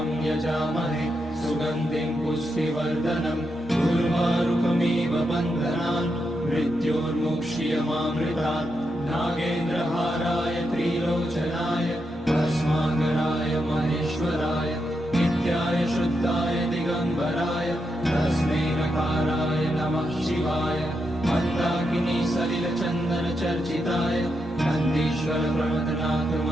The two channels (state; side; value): normal; both; correlation 0.84